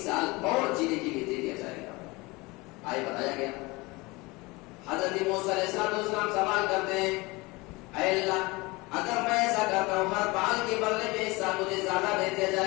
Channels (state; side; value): quieter; right; 23.8 dB